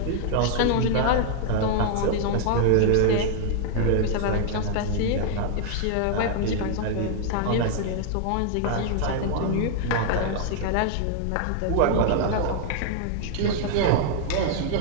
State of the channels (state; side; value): different; both; correlation 0.00